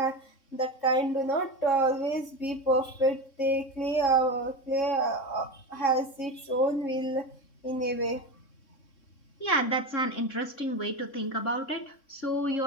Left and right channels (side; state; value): right; late; 3.6 ms